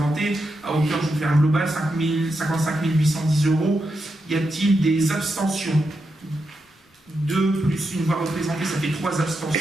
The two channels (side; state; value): both; normal; correlation 0.85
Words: à hauteur, je vous fais un global, 55 810 €. Y a-t-il des abstentions? 2 plus une voix représentée, ça fait 3